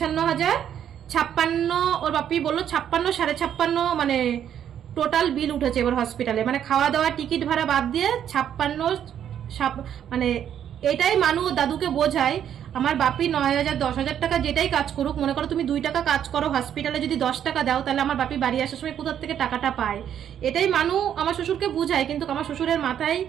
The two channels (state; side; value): quieter; left; 9.6 dB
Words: 56, ওর বাপি বললো 56, 56.5, মানে টোটাল বিল উঠেছে এবার হসপিটালে, মানে খাওয়া দাওয়া টিকিট ভাড়া বাদ দিয়ে 56, মানে এটাই মানু দাদুকে বোঝায়। আমার বাপি 9,000, 10,000 টাকা যেটাই কাজ করুক, মনে করো তুমি 2 টাকা কাজ করো হসপিটালে, যদি 10 টাকা দাও তাহলে আমার বাপি বাড়ি আসার সময় কোথা থেকে টাকাটা পায়, এটাই মানু আমার শ্বশুরকে বোঝায়। কিন্তু আমার শ্বশুরের মাথায়